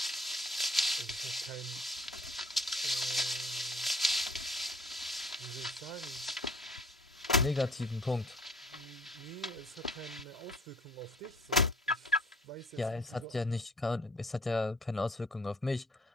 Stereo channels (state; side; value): normal; both; correlation 0.56